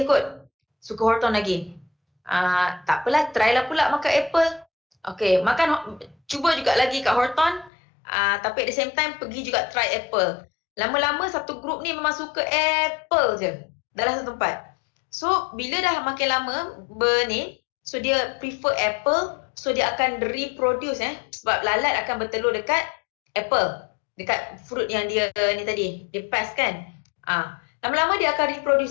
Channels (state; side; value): drops out; right; at 7.7 s